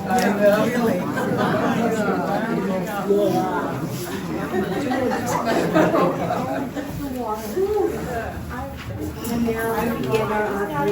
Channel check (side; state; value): both; identical; correlation 1.00